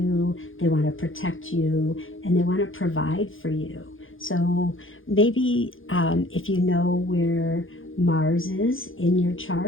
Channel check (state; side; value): late; right; 0.58 ms